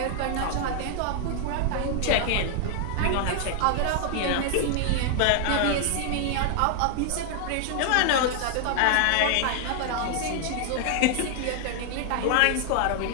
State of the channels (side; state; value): both; different; correlation 0.00